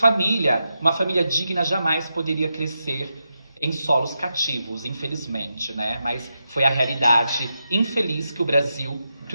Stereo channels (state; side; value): inverted; both; correlation -0.87